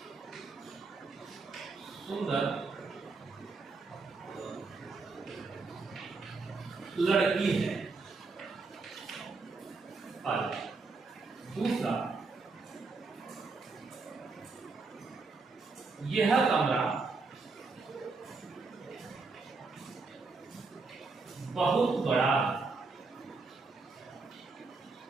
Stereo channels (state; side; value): quieter; left; 4.0 dB